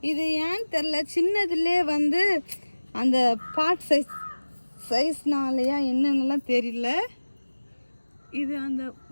இது ஏன்னு தெரில, சின்னதுலே வந்து அந்த பாட் சைஸ்னாலையா என்னென்னலாம் தெரியல. இது அந்த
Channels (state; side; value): inverted; both; correlation -1.00